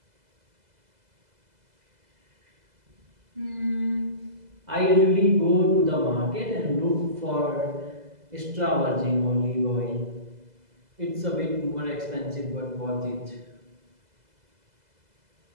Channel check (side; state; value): left; late; 2.0 ms